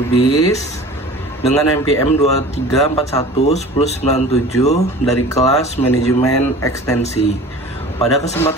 dengan NPM 23411097 dari kelas Manajemen Ekstensi. Pada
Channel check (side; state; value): both; normal; correlation 0.41